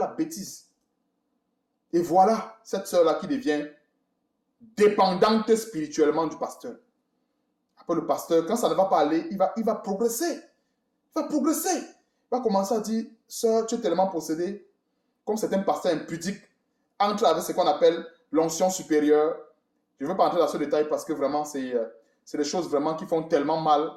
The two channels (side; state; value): both; identical; correlation 1.00